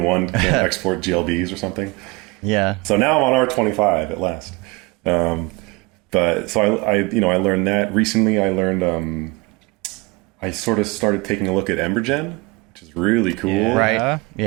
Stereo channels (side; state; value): left; quieter; 25.0 dB